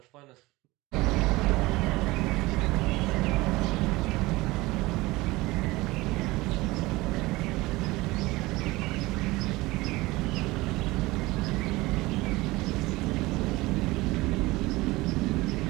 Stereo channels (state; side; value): quieter; left; 20.7 dB